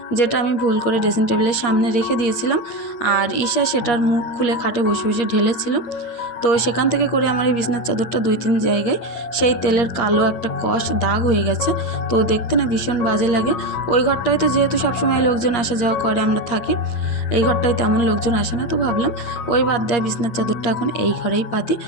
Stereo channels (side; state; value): right; late; 8.9 ms